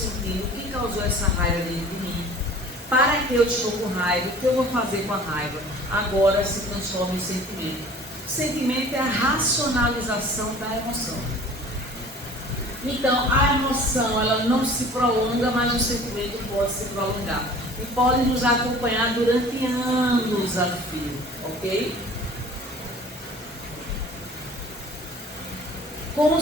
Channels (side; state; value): both; normal; correlation 0.46